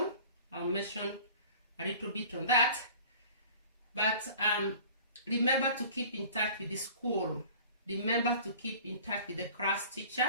I'll mention a little bit on that. But remember to keep in touch with the school. Remember to keep in touch with the class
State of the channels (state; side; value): inverted; both; correlation -0.45